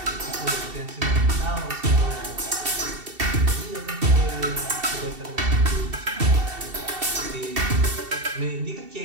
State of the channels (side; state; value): left; late; 2.7 ms